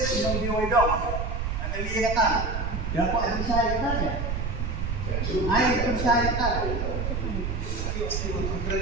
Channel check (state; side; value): noise; right; rumble, 2 dB below the sound